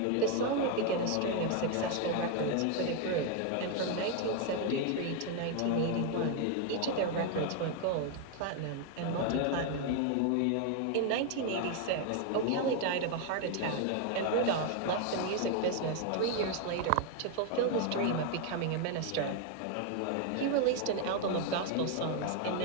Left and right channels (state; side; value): different; both; correlation 0.01